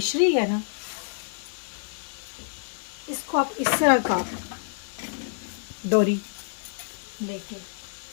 है ना, इसको आप इस तरह का डोरी लेके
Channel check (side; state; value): right; silent; digital silence